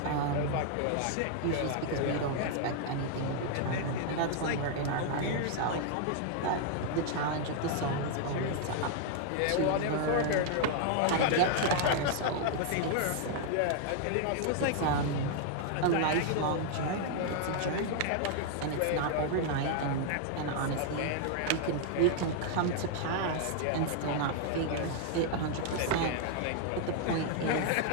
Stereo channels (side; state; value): both; different; correlation 0.00